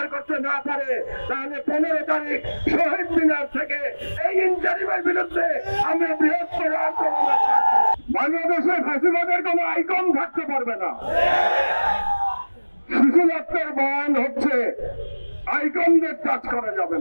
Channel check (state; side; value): inverted; both; correlation -1.00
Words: করতে না পারে, তাহলে 15 তারিখ শহীদ মিনার থেকে এই ইন্টারিমের বিরুদ্ধে আমরা বৃহত্তর আন্দোলন করব। বাংলাদেশে ফ্যাসিবাদের কোন আইকন থাকতে পারবে না। শিশুজাতের বয়ান হচ্ছে আইকনদের টাচ করা যাবে